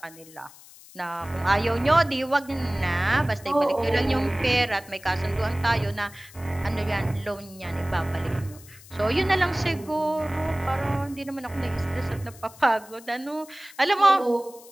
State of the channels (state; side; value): noise; left; hiss, 21 dB below the sound